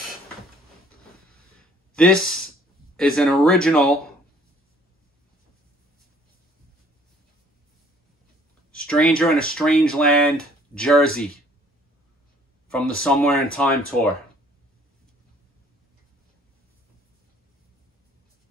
This is an original Stranger in a Strange Land jersey from the Somewhere in Time tour.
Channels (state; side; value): normal; both; correlation 0.58